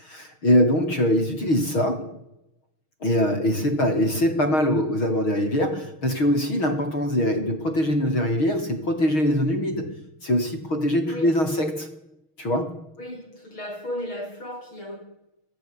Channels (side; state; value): right; late; 6.4 ms